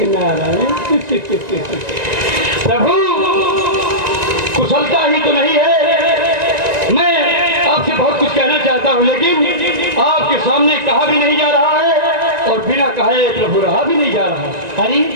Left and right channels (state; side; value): late; left; 1.9 ms